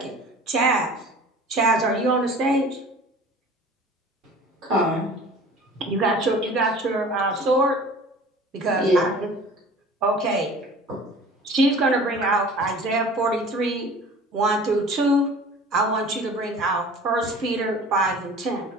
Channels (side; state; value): both; normal; correlation 0.43